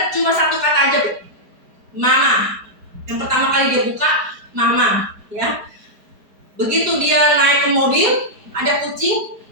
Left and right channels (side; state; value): left; late; 4.6 ms